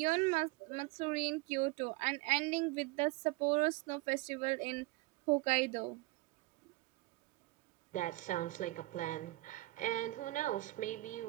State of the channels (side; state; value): left; quieter; 20.3 dB